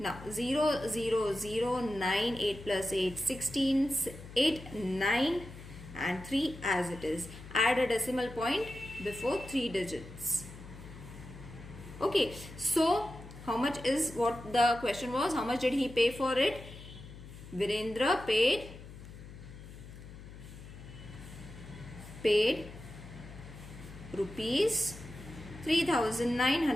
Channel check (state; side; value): noise; left; hum, 15 dB below the sound